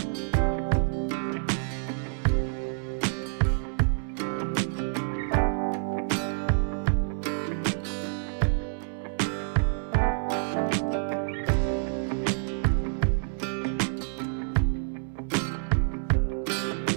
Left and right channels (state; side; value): silent; left; 59 dB below the other